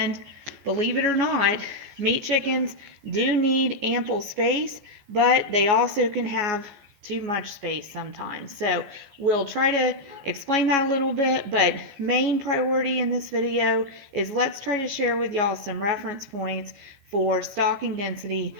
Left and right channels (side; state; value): left; late; 14 ms